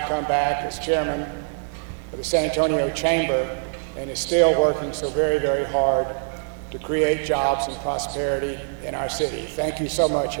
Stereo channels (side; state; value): left; silent; digital silence